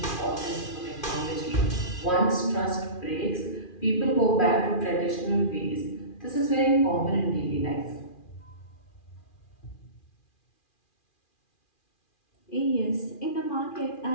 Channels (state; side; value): late; right; 2.4 ms